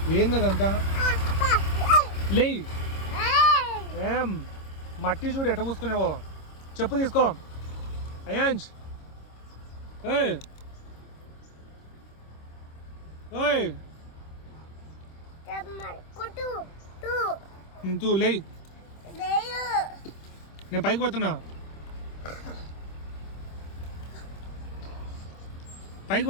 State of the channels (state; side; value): late; right; 26 ms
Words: ఏంది అదంతా? లే ఏం మట్టి చూడు ఎట్ట పూసుకునేవో. చెప్పు తీసుకో అయాన్స్. ఓయ్ ఓయ్ తూ లే, నేను పైకి పోతున్నా. పైకి